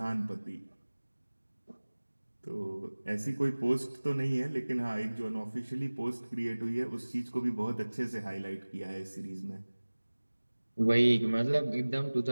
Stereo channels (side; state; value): both; inverted; correlation -1.00